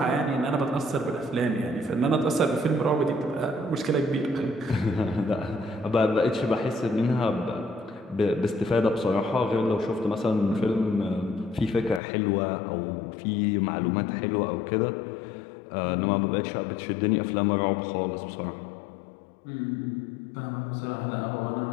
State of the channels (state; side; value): drops out; right; at 12.0 s